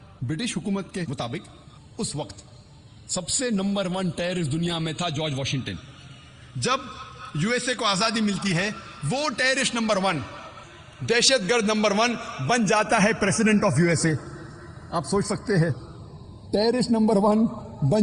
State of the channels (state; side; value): identical; both; correlation 1.00